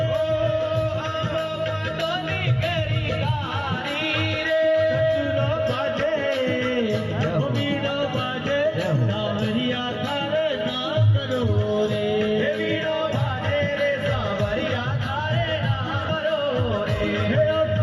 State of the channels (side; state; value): both; identical; correlation 1.00